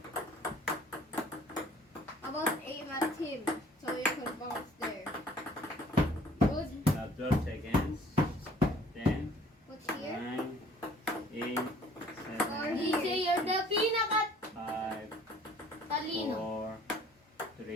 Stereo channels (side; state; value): both; normal; correlation 0.54